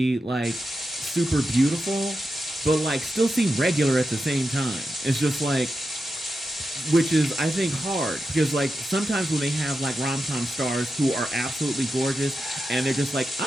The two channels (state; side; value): normal; both; correlation 0.89